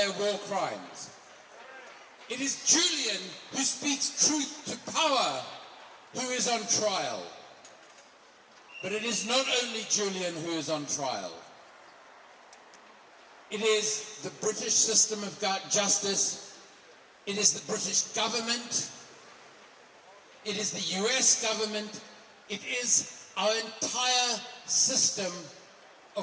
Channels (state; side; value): identical; both; correlation 1.00